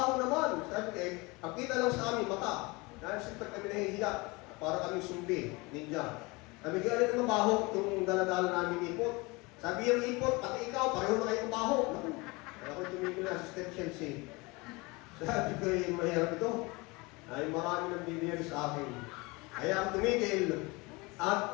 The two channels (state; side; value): quieter; right; 25.2 dB